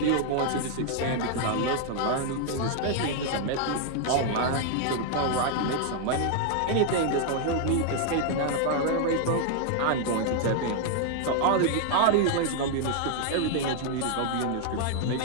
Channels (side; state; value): both; different; correlation 0.00